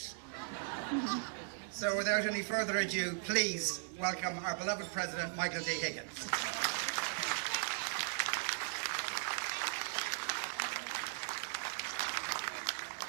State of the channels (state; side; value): silent; left; digital silence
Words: So without any further ado, please welcome our beloved President, Michael D. Higgins.